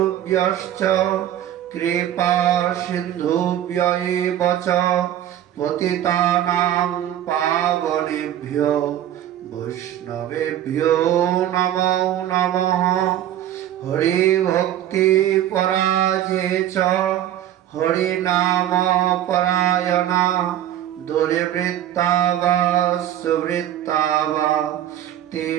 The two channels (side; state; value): left; quieter; 11.7 dB